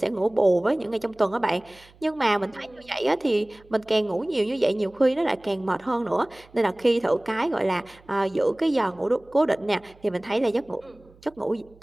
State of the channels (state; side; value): noise; right; hum, 27 dB below the sound